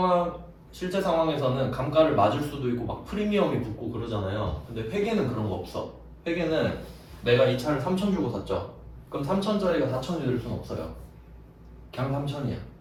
상황에서는 감가를 맞을 수도 있고 막 프리미엄이 붙고 그러잖아요. 근데 회계는 그런 거 없어. 회계는 내가 이 차를 3천 주고 샀죠. 그럼 3천짜리가 4천이 될 수는 없어요. 그냥 3천이야.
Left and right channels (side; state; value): both; identical; correlation 1.00